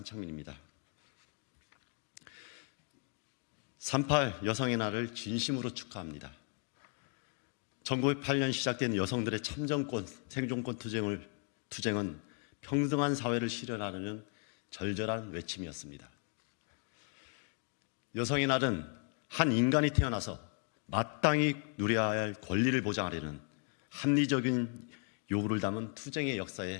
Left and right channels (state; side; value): quieter; right; 38.0 dB